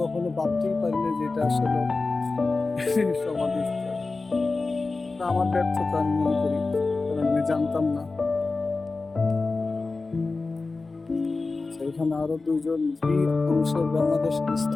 কখনো ভাবতেই পারিনি যে এটা আসলে সমাধিস্থল। আমার ব্যর্থতা আমি মনে করি, কারণ আমি জানতাম না। এখানে আরো 2জন বীর পুরুষের বাংলাদেশের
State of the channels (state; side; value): quieter; right; 3.8 dB